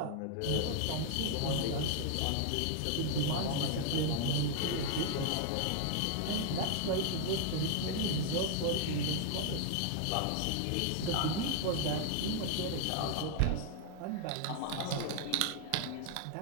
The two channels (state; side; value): different; both; correlation 0.00